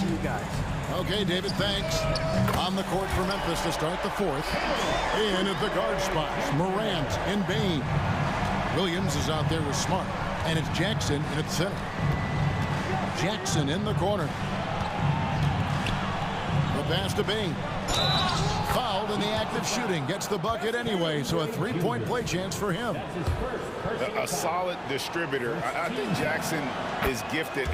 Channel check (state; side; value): identical; both; correlation 1.00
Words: you guys. Okay, David, thanks. On the court for Memphis to start the fourth. In at the guard spots, Morant and Bain. Williams is out there with Smart, and it's Jackson in at center. Jackson in the corner. The pass to Bain. Fouled in the act of shooting. Gets the bucket anyway, so a 3-point play chance for him. A solid distributor. I think Jackson is gifted